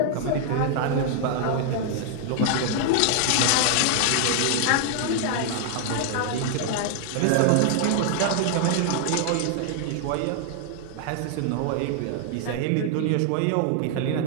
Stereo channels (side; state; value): both; different; correlation 0.00